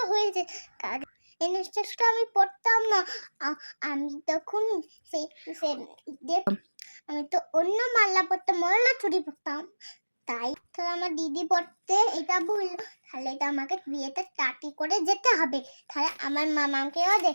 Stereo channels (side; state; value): both; inverted; correlation -1.00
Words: হয়েছে। এই লিপস্টিকটা আমি পরতাম না। আমি তখন আমি তো অন্য মাল্লা পরতাম, মাল্লা চুরি পরতাম। তাই তো আমার দিদি পড়তে এটা ভুল। তাহলে এটা আমাকে বিয়েতে টাটি করে যেতে হবে। তাহলে আমার মামাকেও